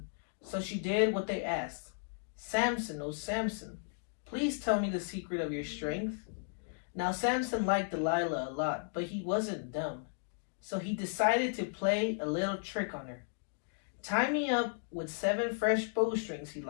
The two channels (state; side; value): silent; right; digital silence